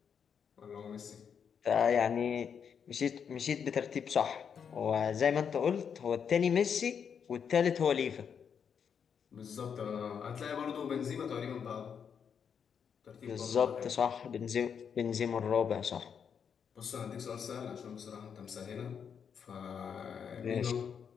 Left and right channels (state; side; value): quieter; right; 7.2 dB